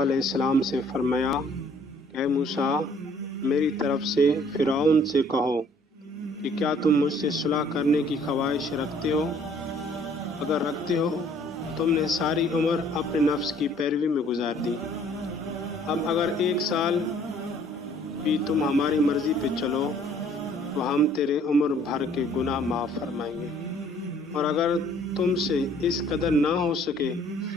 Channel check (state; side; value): normal; both; correlation 0.58